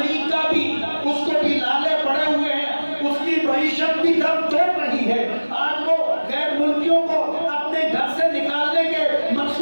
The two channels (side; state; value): both; inverted; correlation -1.00